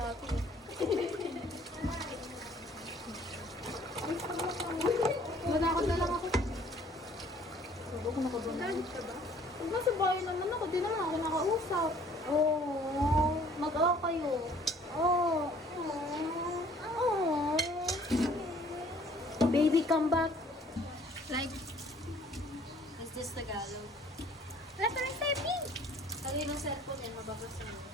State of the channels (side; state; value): both; normal; correlation 0.56